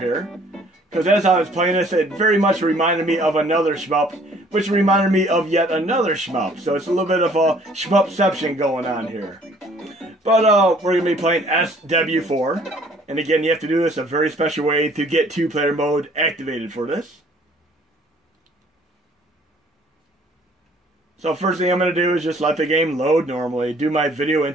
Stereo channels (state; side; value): normal; both; correlation 0.57